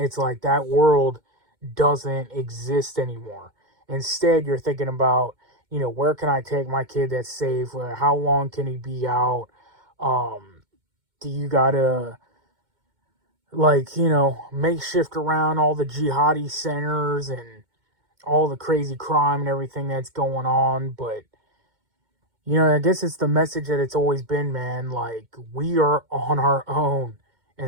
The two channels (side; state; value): left; late; 2.1 ms